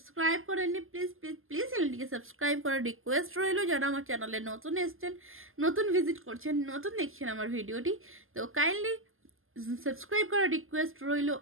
করেননি, প্লিজ প্লিজ প্লিজ চ্যানেলটিকে সাবস্ক্রাইব করার রিকোয়েস্ট রইল। যারা আমার চ্যানেলে নতুন এসছেন, নতুন ভিজিট করছেন, নতুন দেখছেন আমার ভিডিওটি, তো কাইন্ডলি সাবস্ক্রাইব করার রিকোয়েস্ট রইল।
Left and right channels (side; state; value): left; late; 0.60 ms